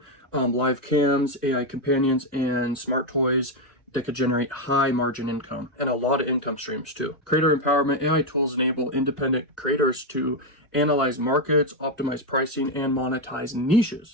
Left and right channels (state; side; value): normal; both; correlation 0.04